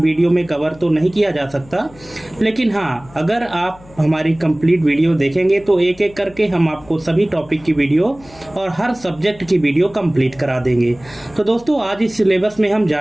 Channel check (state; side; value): noise; left; hum, 23 dB below the sound